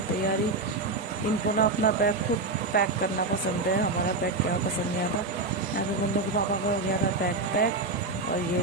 तैयारी। इनको ना अपना बैग खुद पैक करना पसंद है, हमारा बैग क्या पसंद नहीं आता। यहाँ पे मुन्नू के पापा का हो गया था बैग पैक, और ये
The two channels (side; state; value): left; quieter; 3.4 dB